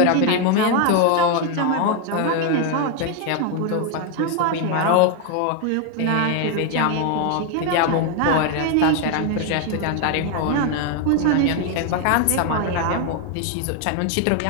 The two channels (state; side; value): different; both; correlation 0.01